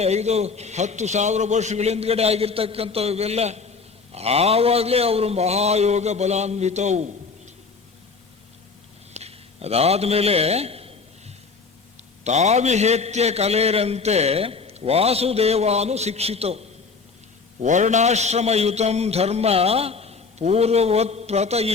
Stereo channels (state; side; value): quieter; right; 4.7 dB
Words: 5-10,000 ವರ್ಷಗಳ ಹಿಂದ್ಗಡೆ ಆಗಿರ್ತಕ್ಕಂಥವು ಇವೆಲ್ಲ. ಆವಾಗಲೇ ಅವರು ಮಹಾಯೋಗ ಬಲಾನ್ವಿತವು. ಅದಾದ್ಮೇಲೆ ತಾವಿಹೇತ್ಯ ಕಲೇರಂತೆ ವಾಸುದೇವಾನು ಶಿಕ್ಷಿತವು ವರ್ಣಾಶ್ರಮಯುತಂ ಧರ್ಮ ಪೂರ್ವವತ್